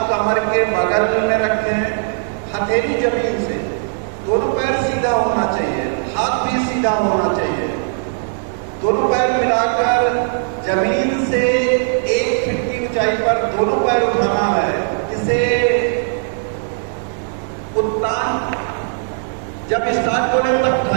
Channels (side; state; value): left; silent; digital silence